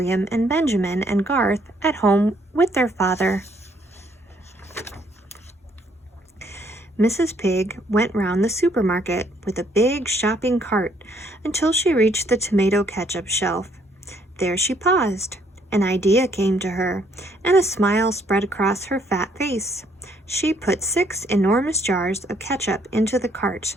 and Benjamin and Garth at home with their father. Mrs. Pig went round the supermarket with a big shopping cart until she reached the tomato ketchup shelf. There she paused. An idea came to her, and a smile spread across her fat face. She put 6 enormous jars of ketchup into the cart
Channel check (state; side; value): normal; both; correlation 0.67